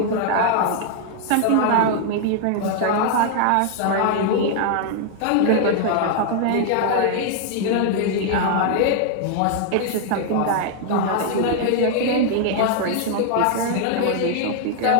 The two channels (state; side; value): different; both; correlation 0.00